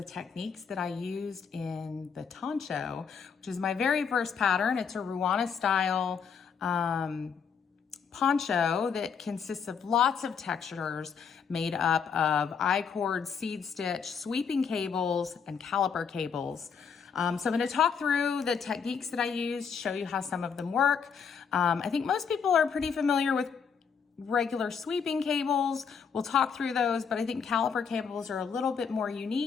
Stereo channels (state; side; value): quieter; right; 6.5 dB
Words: techniques that I used in the Toncho, which is my very first pattern. It's a Ruana style poncho that consists of lots of textures made up of I-cord, seed stitch, sweeping cables, and caliper cables. So I'm going to talk through the techniques that I used, show you how some of them work. I think most people are pretty familiar with regular sweeping cables. We'll talk through those, but I think caliper cables are a little bit more